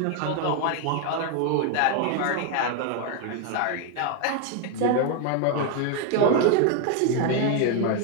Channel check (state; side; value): different; both; correlation 0.01